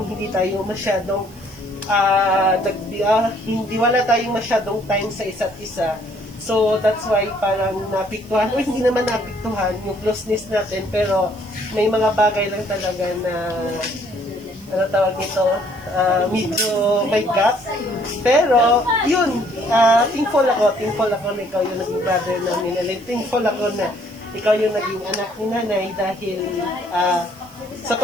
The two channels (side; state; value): right; noise; hiss, 25 dB below the sound